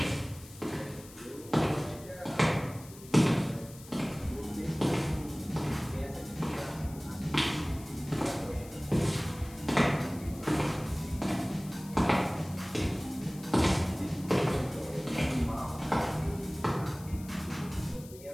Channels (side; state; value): left; noise; hiss, 19 dB below the sound